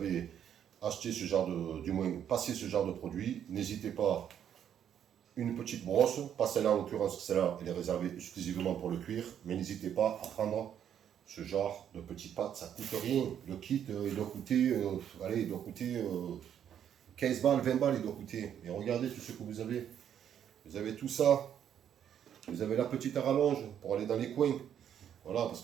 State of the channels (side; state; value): left; quieter; 9.4 dB